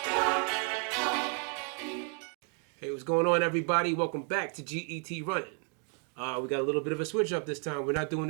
Hey, what's going on, everybody? Welcome back to GET Running. We got a little bit of a switch up this time. We're not doing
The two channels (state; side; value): quieter; left; 38.8 dB